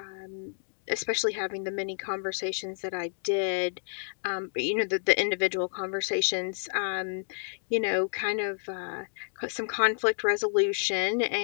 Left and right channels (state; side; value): silent; right; digital silence